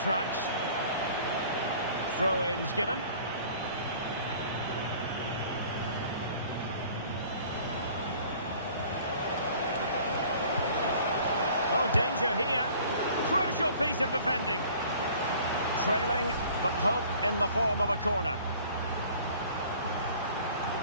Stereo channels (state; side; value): inverted; both; correlation -0.50